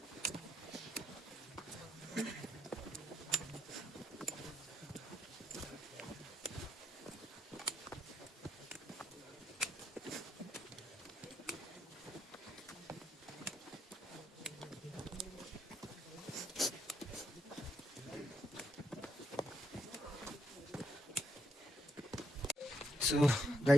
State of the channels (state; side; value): normal; both; correlation 0.78